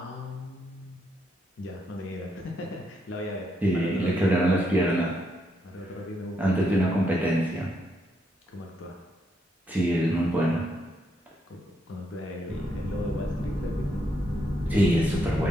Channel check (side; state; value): both; normal; correlation 0.78